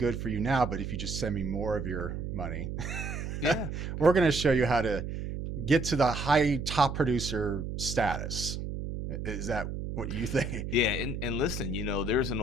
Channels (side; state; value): right; noise; hum, 5 dB below the sound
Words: for you now, but if you just send me more of your money, Yeah. we're going to show you how to get to the high top producer status. Is that what you think? Yeah, and listen, there's an